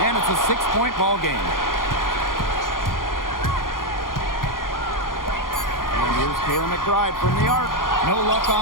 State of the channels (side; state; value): right; late; 0.90 ms